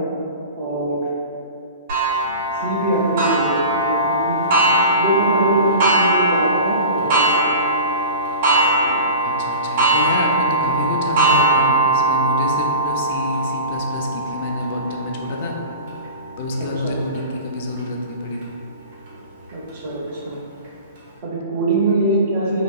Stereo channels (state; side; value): inverted; both; correlation -0.35